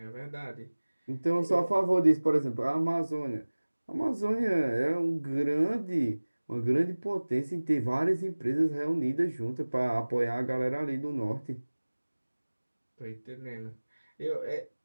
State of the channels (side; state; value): both; inverted; correlation -1.00